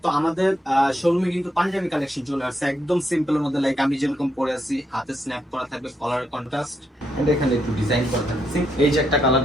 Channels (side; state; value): both; normal; correlation 0.79